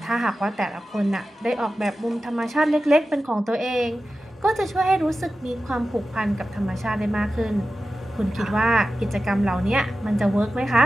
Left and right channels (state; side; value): normal; both; correlation 0.94